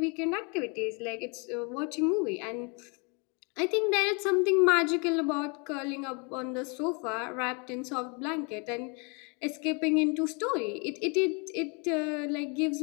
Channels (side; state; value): right; quieter; 33.4 dB